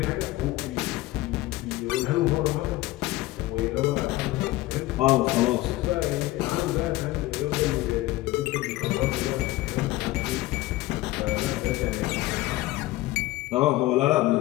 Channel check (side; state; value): right; quieter; 17.8 dB